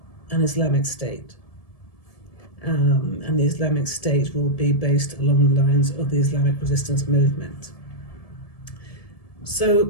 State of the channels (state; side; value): late; right; 1.7 ms